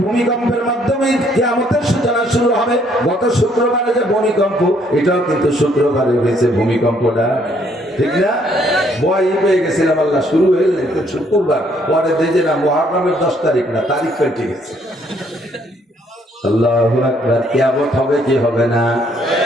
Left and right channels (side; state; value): both; normal; correlation 0.67